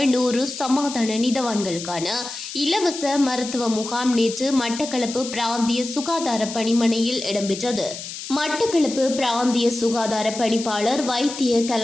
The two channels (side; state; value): left; noise; hiss, 9 dB below the sound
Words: 100 சமாதான நீதவான்களுக்கான இலவச மருத்துவ முகாம் நேற்று மட்டக்களப்பு பிராந்திய சுகாதார பணிமனையில் இடம்பெற்றது. மட்டக்களப்பு பிராந்திய சுகாதார பணிப்பாளர் வைத்திய